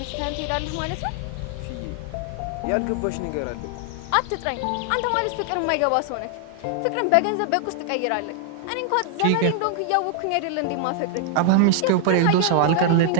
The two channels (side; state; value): both; different; correlation 0.00